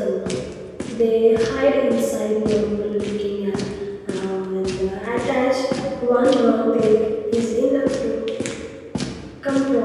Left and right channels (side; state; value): both; identical; correlation 1.00